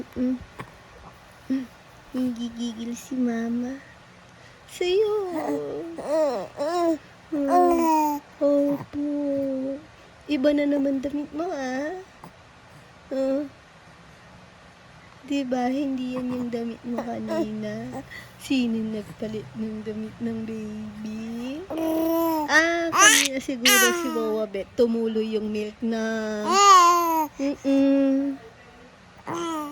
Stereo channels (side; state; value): both; identical; correlation 1.00